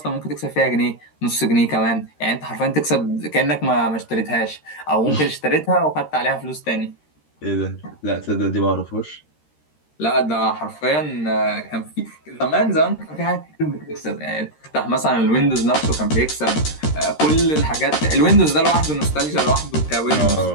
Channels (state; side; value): late; right; 13 ms